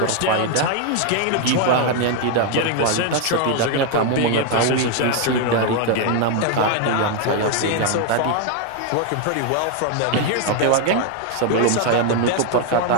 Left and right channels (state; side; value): different; both; correlation 0.01